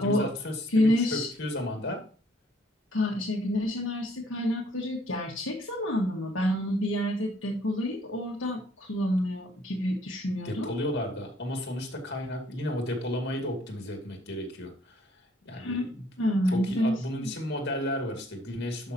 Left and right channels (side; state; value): both; normal; correlation 0.63